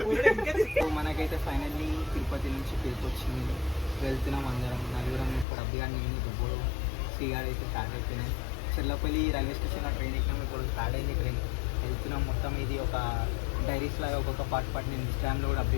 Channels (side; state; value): right; drops out; at 5.5 s